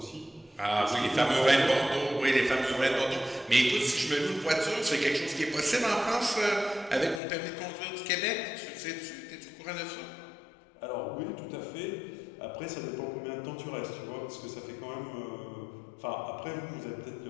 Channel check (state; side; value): drops out; right; at 7.2 s